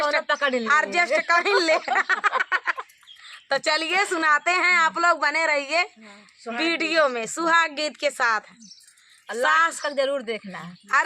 कर ले। तो चलिए सुनाते हैं, आप लोग बने रहिए वीडियो में सुहाग गीत के साथ। लास्ट तक जरूर देखना।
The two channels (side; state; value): both; identical; correlation 1.00